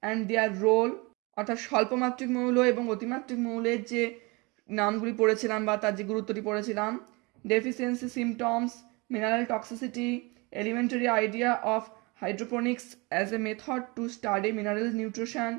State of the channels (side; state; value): left; quieter; 26.8 dB